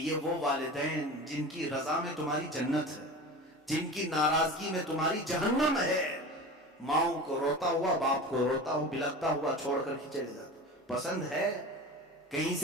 وہ والدین جن کی رضا میں تمہاری جنت ہے، جن کی ناراضگی میں تمہاری جہنم ہے، ماؤں کو روتا ہوا، باپ کو روتا ہوا بلکتا ہوا چھوڑ کر کے چلے جاتے. پسند ہے کہیں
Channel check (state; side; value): normal; both; correlation 0.32